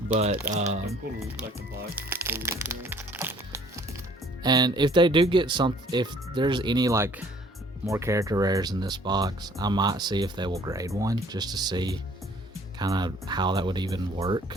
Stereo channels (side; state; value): both; normal; correlation 0.57